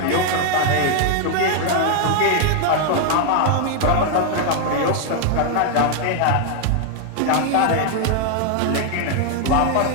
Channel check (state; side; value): different; both; correlation 0.00